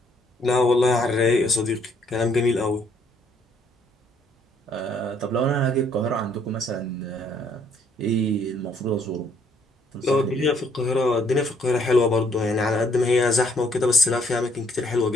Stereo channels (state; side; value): normal; both; correlation 0.66